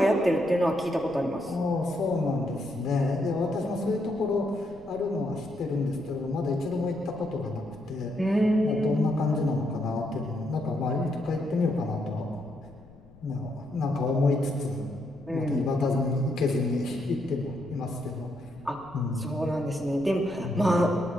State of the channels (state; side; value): noise; left; rumble, 23 dB below the sound